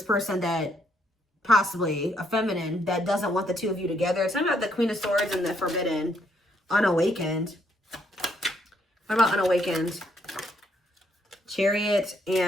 person that possibly, a feminine, that doesn't want the two of you together. Tell me about the Queen of Swords and the Forbidden. Unawakened. What about unawakened? Chariot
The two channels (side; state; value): both; normal; correlation 0.72